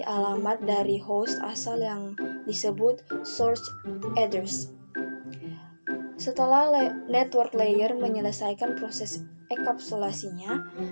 alamat dari host asal yang disebut source address. Setelah network layer menyelesaikan proses enkapsulasinya,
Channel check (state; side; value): inverted; both; correlation -1.00